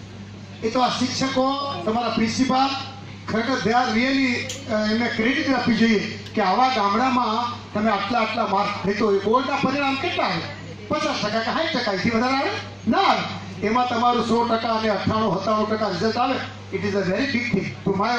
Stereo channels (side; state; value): both; identical; correlation 1.00